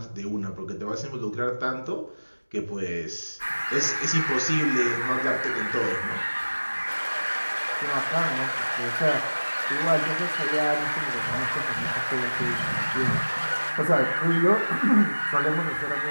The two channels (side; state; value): both; inverted; correlation -1.00